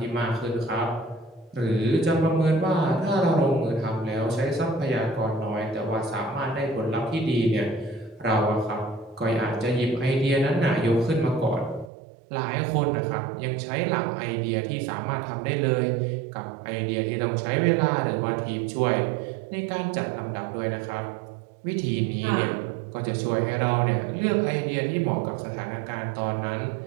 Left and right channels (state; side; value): drops out; left; at 11.9 s